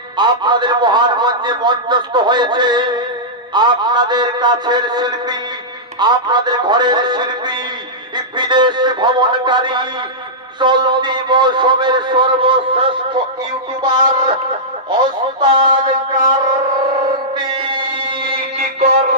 আপনাদের মহান মঞ্চে মঞ্চস্থ হয়েছে আপনাদের কাছের শিল্পী, আপনাদের ঘরের শিল্পী, বিদেশ ভ্রমণকারী, চলতি মৌসুমের সর্বশ্রেষ্ঠ ইউটিউবার ওস্তাদ কার্তিক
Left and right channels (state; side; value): normal; both; correlation -0.13